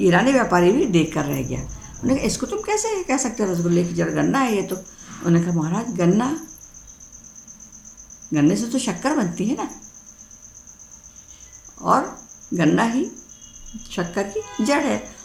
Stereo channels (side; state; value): both; identical; correlation 1.00